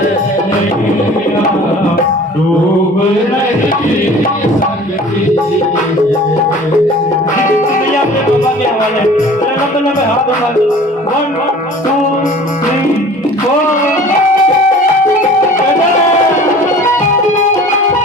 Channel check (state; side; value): normal; both; correlation 0.45